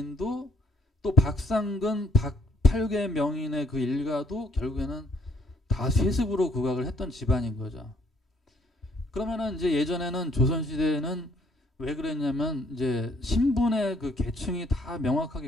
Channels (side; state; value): both; normal; correlation 0.66